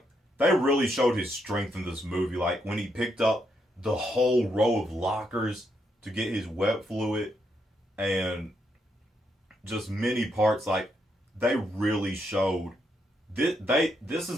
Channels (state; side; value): normal; both; correlation 0.78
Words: they really showed his strength in this movie. Like, when he picked up the whole row of lockers to get his web fluid and just many parts, like, they really showed this